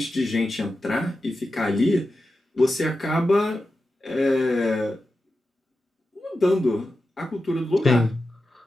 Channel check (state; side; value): normal; both; correlation 0.91